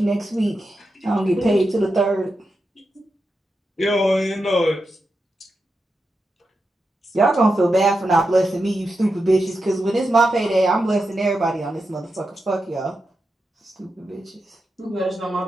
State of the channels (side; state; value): both; normal; correlation 0.88